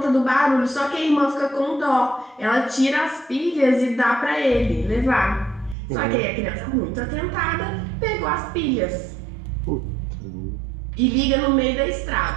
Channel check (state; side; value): drops out; left; at 5.8 s